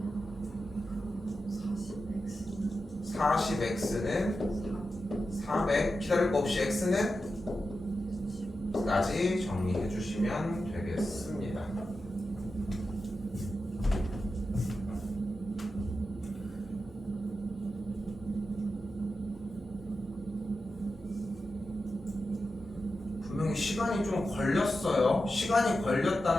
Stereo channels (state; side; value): normal; both; correlation 0.90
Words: 40X는 400, 기다릴 거 없이 X는 까지 정리해 주시면 되겠습니다. 분명히 시간이 좀 걸렸어요. 시간이